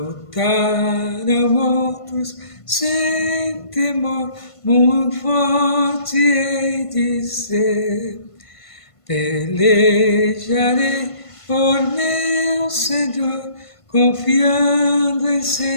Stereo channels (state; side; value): late; right; 1.5 ms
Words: outros sem temor, muito forte hei de ser. Pelejarei por meu Senhor, confiando em